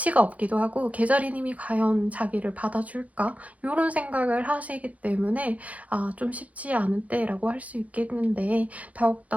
없기도 하고 개자리님이 과연 자기를 받아줄까? 이런 생각을 하시기 때문에 좀 쉽지 않은 때라고 할 수 있겠는데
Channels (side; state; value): left; late; 0.069 ms